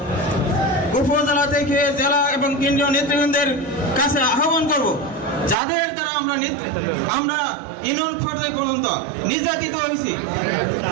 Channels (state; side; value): drops out; left; at 5.6 s